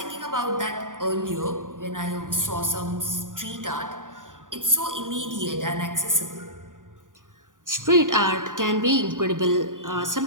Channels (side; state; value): left; late; 0.88 ms